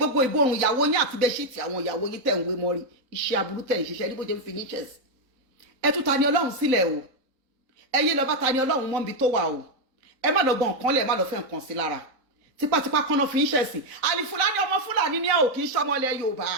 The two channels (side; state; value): left; late; 3.9 ms